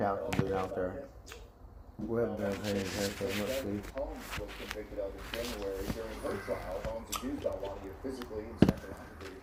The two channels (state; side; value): identical; both; correlation 1.00